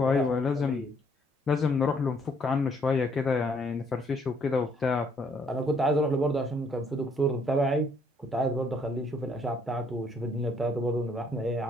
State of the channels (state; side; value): normal; both; correlation 0.67